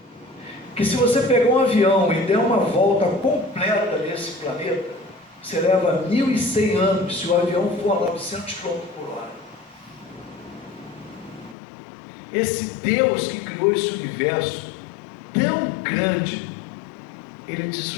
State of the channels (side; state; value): right; drops out; at 11.6 s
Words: que se você pegar um avião e der uma volta completa nesse planeta, você leva 1.100 anos se o avião for a 900 km por hora. Esse Deus que criou esse universo tão grande, Ele te